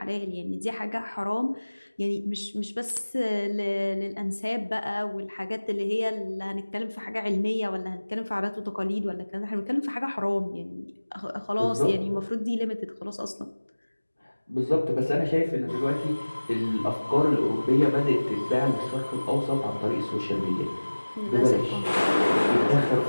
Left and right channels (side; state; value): both; inverted; correlation -1.00